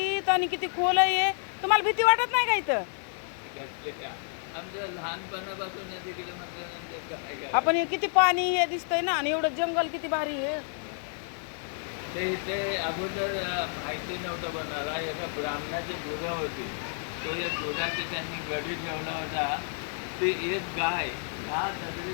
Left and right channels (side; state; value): right; silent; 58 dB below the other